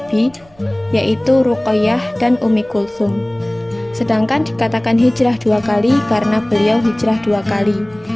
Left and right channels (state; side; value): noise; right; rumble, 29 dB below the sound